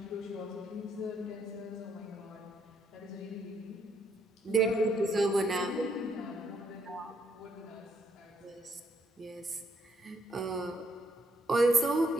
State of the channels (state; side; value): normal; both; correlation 0.73